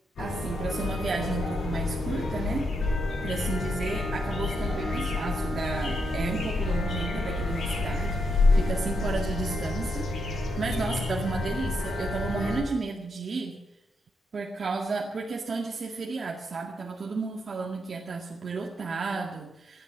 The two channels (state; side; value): normal; both; correlation 0.80